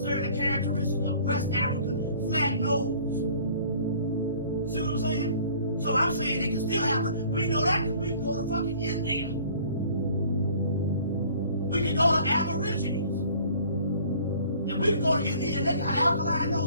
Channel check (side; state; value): both; inverted; correlation -0.52